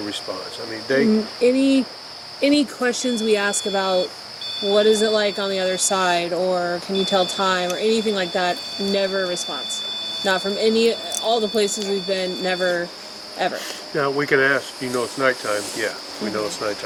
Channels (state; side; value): identical; both; correlation 1.00